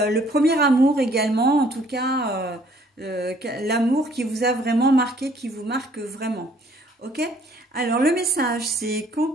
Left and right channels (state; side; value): normal; both; correlation 0.61